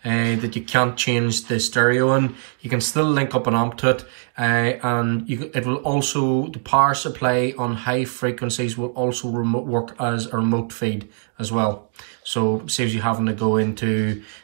that you can't change the stereo in, you can still link up an amp to it, and it will also, the power supply on high frequencies will also work as a remote feed as well. So saves you having to go into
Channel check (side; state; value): left; silent; 56 dB below the other